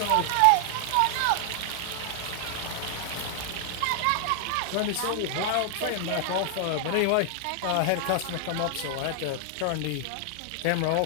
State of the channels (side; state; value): both; different; correlation 0.00